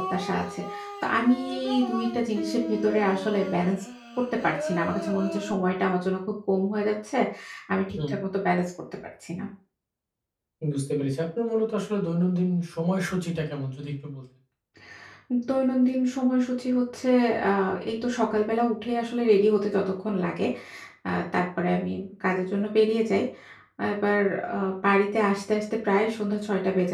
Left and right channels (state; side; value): identical; both; correlation 1.00